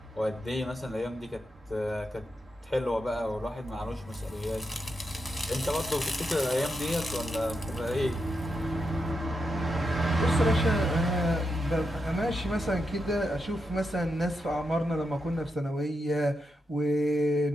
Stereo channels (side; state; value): both; normal; correlation 0.85